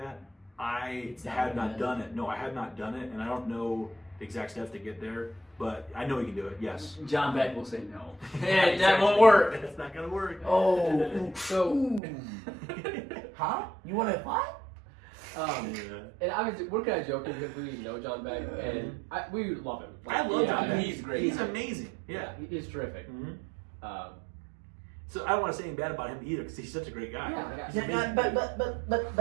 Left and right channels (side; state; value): left; drops out; at 12.0 s